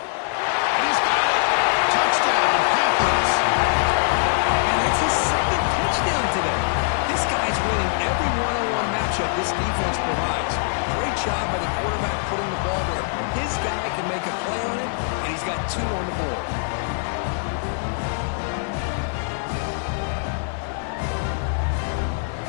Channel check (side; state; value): right; silent; 61 dB below the other